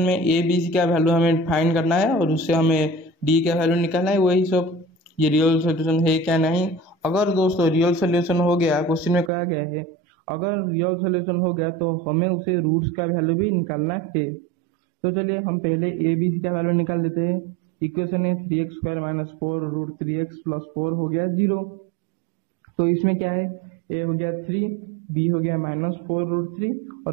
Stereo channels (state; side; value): drops out; left; at 9.3 s